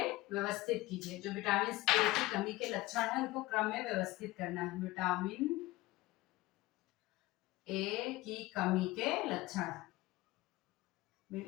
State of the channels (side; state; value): right; quieter; 19.4 dB